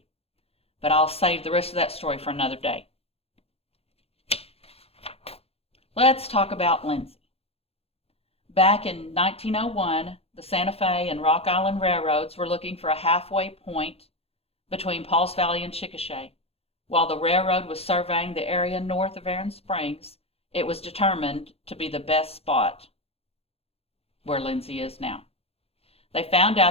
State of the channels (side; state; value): right; late; 0.29 ms